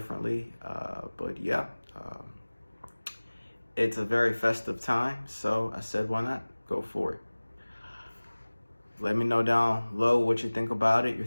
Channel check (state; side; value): inverted; both; correlation -1.00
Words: it's a very festive time, so I said, why not go for it? Let me know down below what you think about it, your